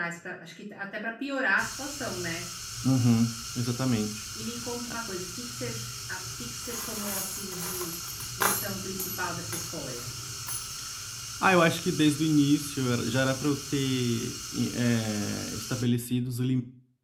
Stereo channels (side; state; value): both; identical; correlation 1.00